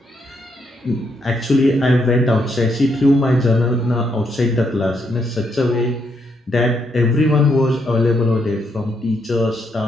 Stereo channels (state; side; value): normal; both; correlation 0.77